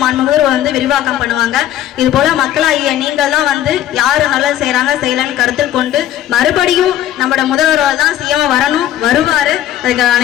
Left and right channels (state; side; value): quieter; right; 12.2 dB